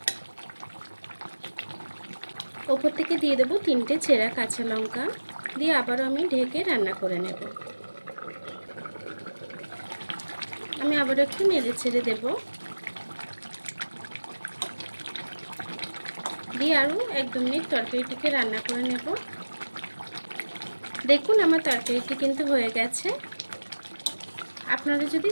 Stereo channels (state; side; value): inverted; both; correlation -1.00